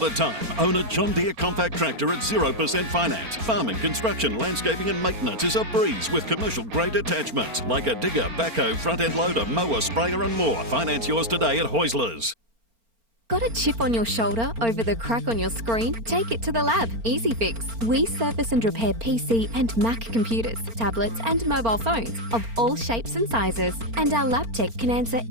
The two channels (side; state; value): left; late; 4.4 ms